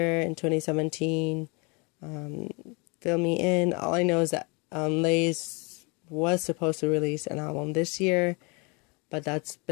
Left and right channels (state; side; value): quieter; right; 30.6 dB